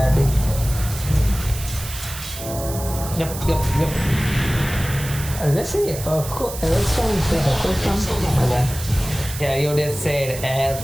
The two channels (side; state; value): right; noise; hiss, 11 dB below the sound